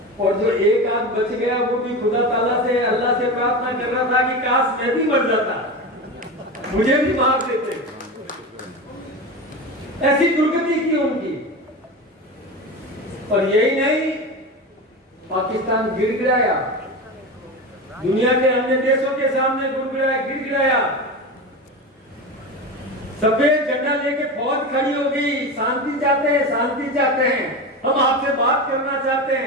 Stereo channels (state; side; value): normal; both; correlation 0.24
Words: और जो एक आध बच गया वो भी खुदा ताला से, अल्लाह से प्रार्थना कर रहा था कि काश मैं भी मर जाता, मुझे भी मार देते। ऐसी दुर्गति की उनकी। और यही नहीं, पाकिस्तान गिड़गिड़ाया, दुनिया के अन्य देशों के सामने गिड़गिड़ाया, सफेद झंडा लेके फौज खड़ी हो गई, शांति चाहते हैं, शांति चाहते हैं, हम आपसे बात करना चाहते